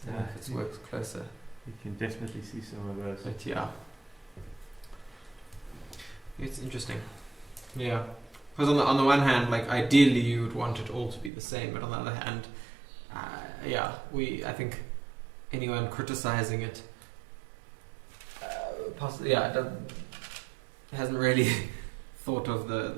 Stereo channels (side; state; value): left; drops out; at 11.3 s